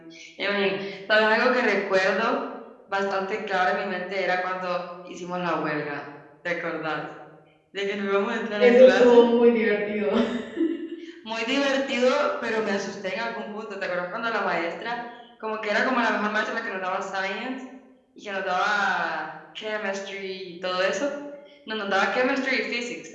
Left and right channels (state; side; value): identical; both; correlation 1.00